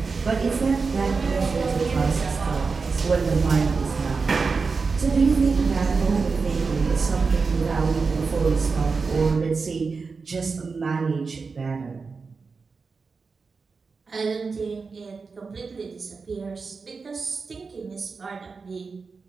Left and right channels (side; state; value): left; quieter; 4.7 dB